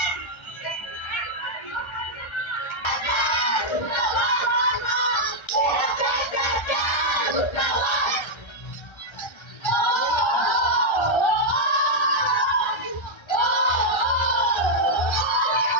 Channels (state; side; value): late; right; 1.3 ms